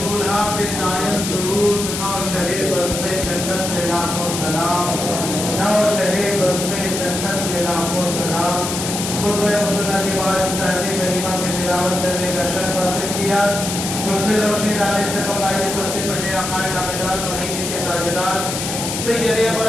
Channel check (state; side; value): noise; left; hiss, 4 dB below the sound